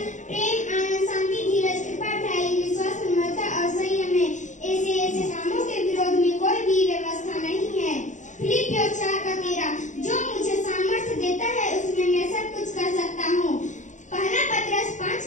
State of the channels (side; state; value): right; late; 0.36 ms